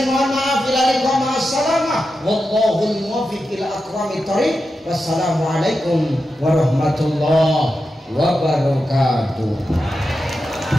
mohon maaf bila likum assalamah wallahul muwaffiq ila aqwamit thoriq. Wassalamualaikum warahmatullahi wabarakatuh.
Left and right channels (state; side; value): normal; both; correlation 0.90